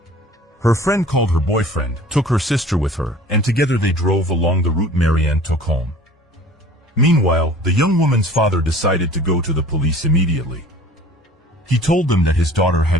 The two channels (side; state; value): both; normal; correlation 0.46